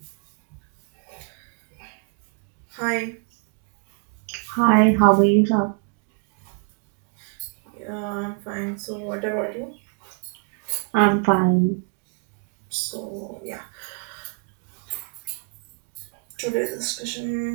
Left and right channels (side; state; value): left; quieter; 40.0 dB